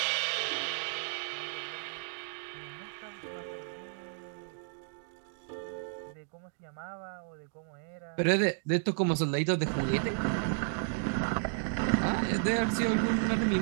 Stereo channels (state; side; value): silent; left; digital silence